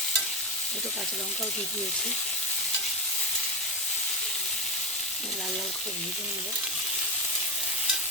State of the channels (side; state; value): both; normal; correlation 0.15